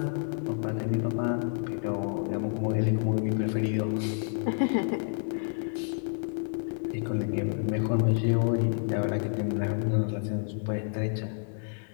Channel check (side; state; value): right; silent; digital silence